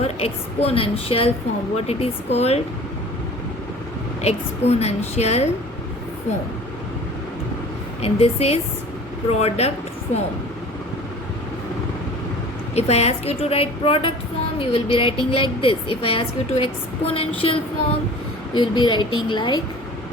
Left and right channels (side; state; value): both; normal; correlation 0.44